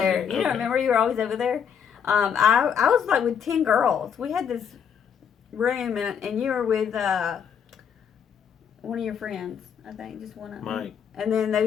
You don't remember you were always over there? I was like with 10 girls. We had this room, and you were with one of your friends, I think, just one of them. Mike. And then there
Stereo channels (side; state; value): right; quieter; 7.6 dB